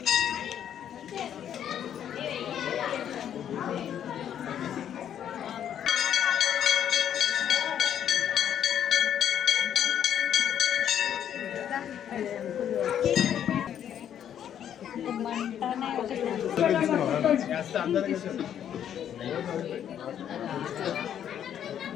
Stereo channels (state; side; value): quieter; right; 9.7 dB